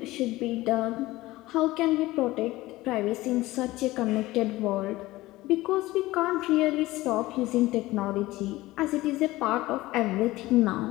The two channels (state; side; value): quieter; right; 18.2 dB